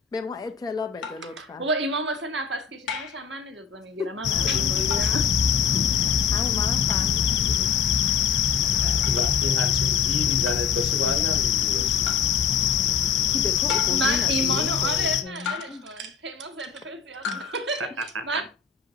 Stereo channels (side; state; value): right; quieter; 6.5 dB